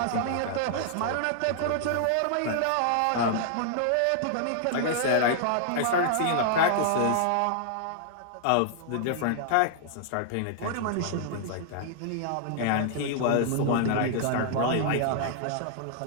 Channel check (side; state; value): both; different; correlation -0.01